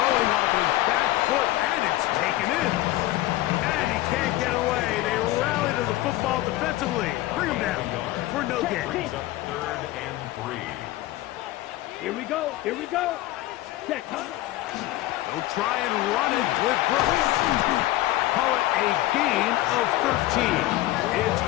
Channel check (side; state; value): right; quieter; 16.5 dB